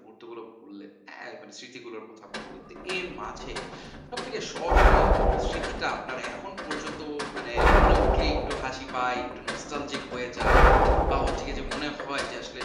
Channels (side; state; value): both; identical; correlation 1.00